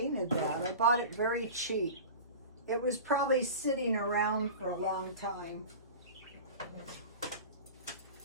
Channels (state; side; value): inverted; both; correlation -0.34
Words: that. I bought it very cheap. It was probably sitting around for a long time.